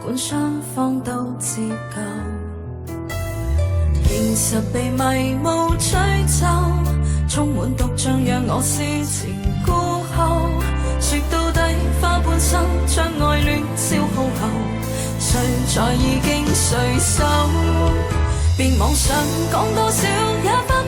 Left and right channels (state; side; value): identical; both; correlation 1.00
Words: 管雙方都自救，現實被迷霧吹走，充滿毒醬讓我思前顧後。說到底花半生將愛戀消耗後，誰在意經誰手？別妄想講多少也翻